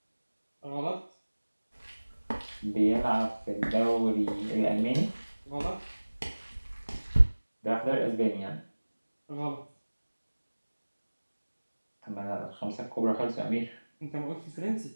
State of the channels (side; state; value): both; inverted; correlation -1.00